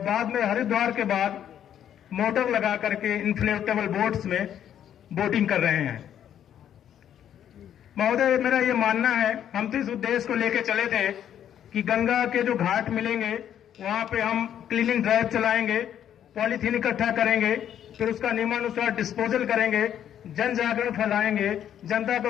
में हरिद्वार के बाद मोटर लगा करके इन्फ्लेटेबल बोट्स में बोटिंग कर रहे हैं। महोदय, मेरा ये मानना है, हम तो इस उद्देश्य को लेकर चले थे कि गंगा के जो घाट मिलेंगे वहां पे हम क्लीनिंग ड्राइव चलाएंगे, पॉलीथीन इकट्ठा करेंगे, फिर उसका नियमानुसार डिस्पोजल करेंगे, जन जागरण फैलाएंगे, जनता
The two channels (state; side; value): quieter; right; 10.0 dB